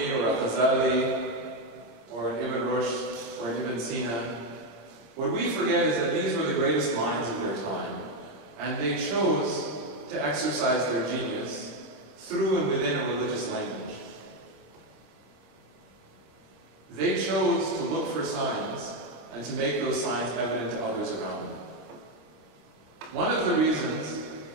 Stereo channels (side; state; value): left; late; 26 ms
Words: or a Ghazali or an Ibn Rushd or an Ibn Sina. What we forget is that these were the greatest minds of their time, and they chose to exercise their genius through and within a religious language. They chose to look for signs and to make those signs evident to others around them. One of the reasons